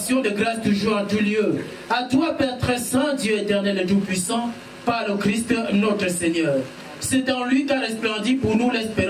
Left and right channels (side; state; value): both; identical; correlation 1.00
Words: de grâce toujours en tout lieu. À toi, Père très saint, Dieu éternel et tout-puissant, par le Christ, notre Seigneur. C'est en lui qu'a resplendi pour nous